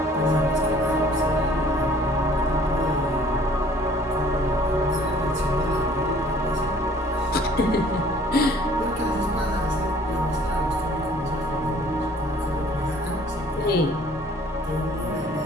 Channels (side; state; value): both; normal; correlation 0.55